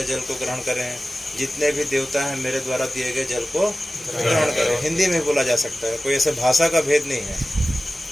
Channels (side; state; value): both; normal; correlation 0.96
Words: जल को ग्रहण करें। जितने भी देवता हैं मेरे द्वारा दिए गए जल को ग्रहण करें। हिंदी में बोला जा सकता है, कोई ऐसे भाषा का भेद नहीं है,